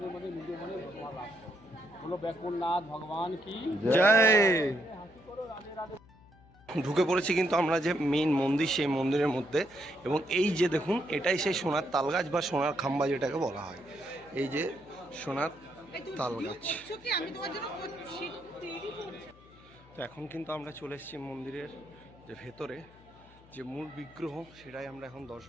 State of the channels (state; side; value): noise; left; hum, 25 dB below the sound